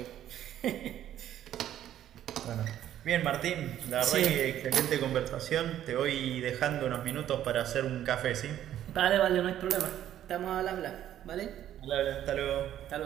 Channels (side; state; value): left; quieter; 11.6 dB